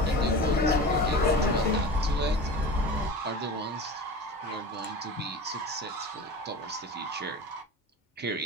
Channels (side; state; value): both; normal; correlation 0.33